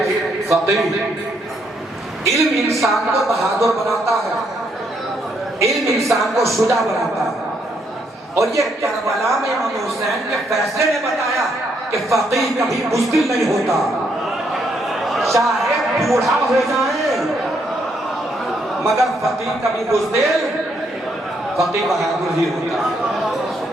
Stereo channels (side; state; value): both; normal; correlation 0.74